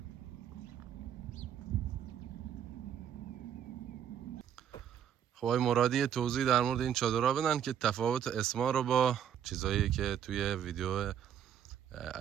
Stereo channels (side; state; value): left; quieter; 9.3 dB